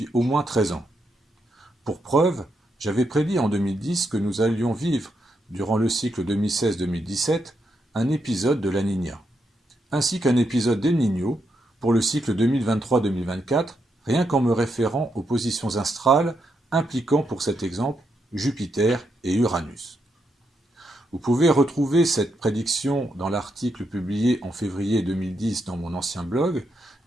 au moins 13 ans. Pour preuve, j'avais prédit en 2010 que nous allions vivre, durant le cycle 2016-2017, un épisode de la Niña, ainsi qu'un épisode d'El Niño pour le cycle 2023-2024, rien qu'en me référant aux positions astrales impliquant pour cet exemple Jupiter et Uranus. Vous pouvez retrouver cette prédiction dans l'article publié en février 2010 dans mon ancien blog,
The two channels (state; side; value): normal; both; correlation 0.81